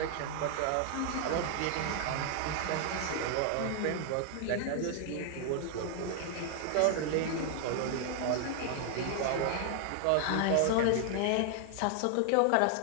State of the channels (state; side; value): different; both; correlation 0.00